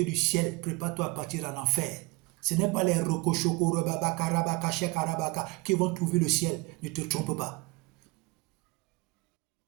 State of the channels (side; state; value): left; quieter; 24.3 dB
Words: du ciel. Prépare-toi à partir en enfer. Ce n'est pas les rokochoko, robabaka, rabaka, shekarabaka qui vont trouver le ciel. Ne te trompe pas.